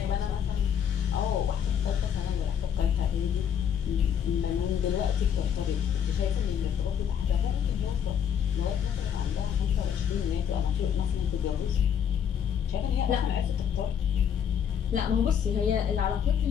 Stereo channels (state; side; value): quieter; right; 8.4 dB